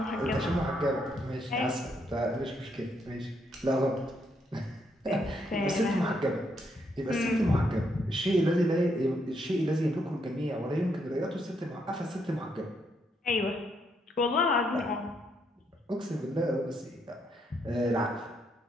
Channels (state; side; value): normal; both; correlation 0.76